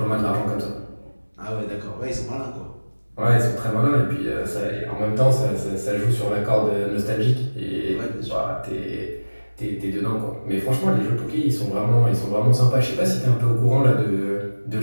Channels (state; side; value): inverted; both; correlation -1.00